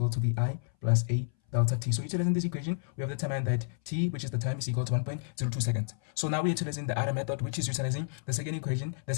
to vi plus a delta t. So utilizing this equation, we have determined that t, which is the time, is equal to 1.02 seconds. So now we're utilizing the other method, which is utilizing the second equation,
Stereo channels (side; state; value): right; silent; 57 dB below the other